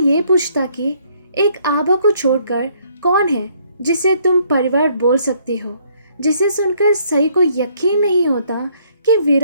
पूछता कि एक आबा को छोड़कर कौन है जिसे तुम परिवार बोल सकती हो। जिसे सुनकर सई को यकीन नहीं होता कि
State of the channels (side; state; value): both; inverted; correlation -0.66